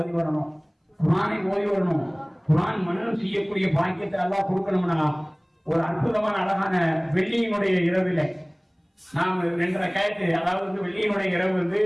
வரணும், குர்ஆனை ஓதி வரணும். குர்ஆன் மனனம் செய்யக்கூடிய பாக்கியத்தை எல்லாம் கொடுக்கணும்னா ஒரு அற்புதமான அழகான வெள்ளியினுடைய இரவில நாம் 2 ரக்காயத்து, அதாவது வந்து வெள்ளியினுடைய இரவு வந்து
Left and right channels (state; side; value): identical; both; correlation 1.00